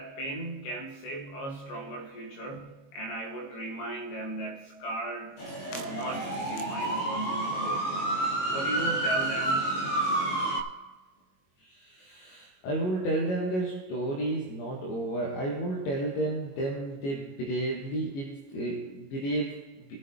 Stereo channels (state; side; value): late; right; 22 ms